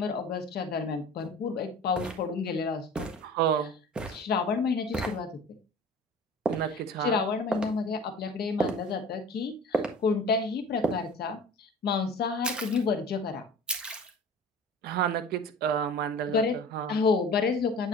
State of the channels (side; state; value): both; normal; correlation 0.41